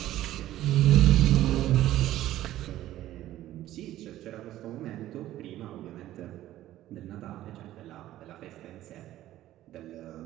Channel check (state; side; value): quieter; left; 14.1 dB